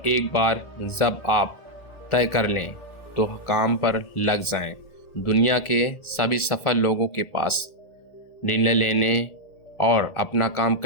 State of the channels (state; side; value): late; right; 1.8 ms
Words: एक बार जब आप तय कर लें तो काम पर लग जाएं। दुनिया के सभी सफल लोगों के पास निर्णय लेने और अपना काम